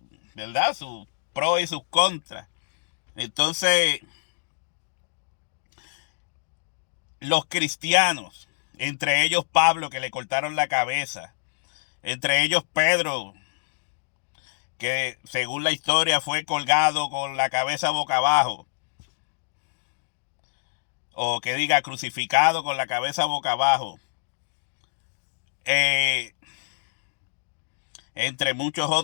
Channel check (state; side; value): silent; right; digital silence